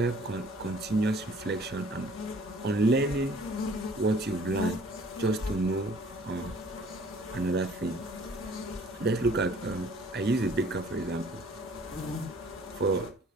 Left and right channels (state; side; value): normal; both; correlation 0.55